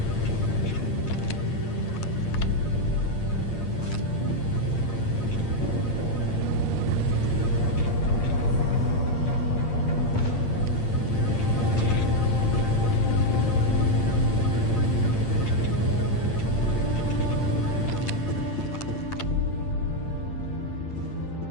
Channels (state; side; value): late; right; 8.8 ms